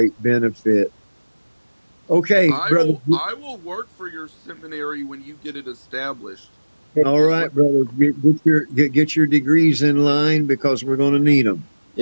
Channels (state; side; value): inverted; both; correlation -1.00